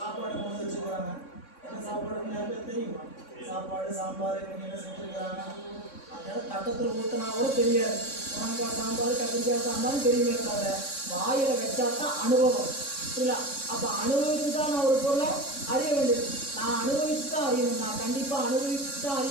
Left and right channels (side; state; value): right; late; 3.6 ms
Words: கொண்டு வச்சுக்கிறாங்க. என்ன சாப்பாடு தெரியுமா? சாப்பாடு, சாம்பார், இவங்க என்ன செஞ்சுருக்கிறாங்க. அதனால தட்டத்தில் ஊற்றினா கூட தெரியாது. முருங்கைக்காய் சாம்பார், கத்திரிக்காய் சாம்பார் தெரியுமே தவிர வாயில் வச்சா தான் அனுபவம். இல்லை, அப்போ அனுபவித்து தான் நான் ஒரு பொருளை அறிய வேண்டியது. நான் நான் அனுபவிச்சு தான் அறியணும். நான் கண்டிப்பாக அனுபவிச்சு தான்